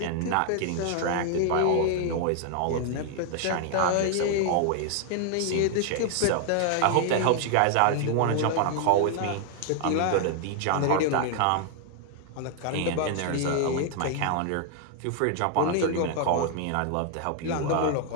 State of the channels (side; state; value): both; different; correlation 0.00